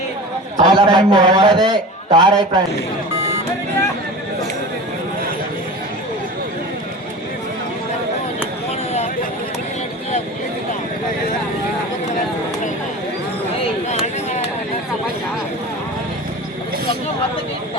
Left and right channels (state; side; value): normal; both; correlation 0.34